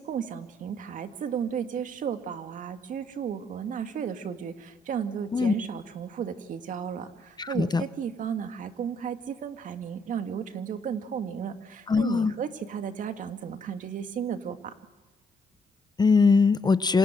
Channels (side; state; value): both; normal; correlation 0.71